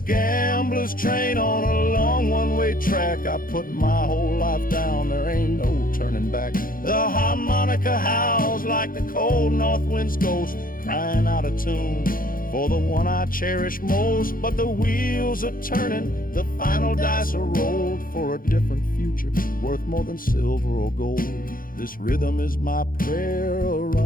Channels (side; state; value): right; late; 0.41 ms